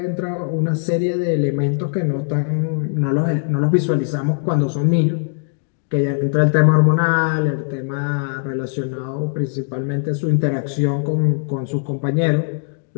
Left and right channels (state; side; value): silent; right; digital silence